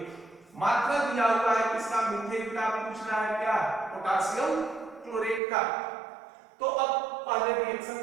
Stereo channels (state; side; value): drops out; left; at 5.4 s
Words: मात्रा दिया हुआ है किसका, मीथेन का, पूछ रहा है क्या, पोटासियम क्लोरेट का। तो अब पहले रिएक्शन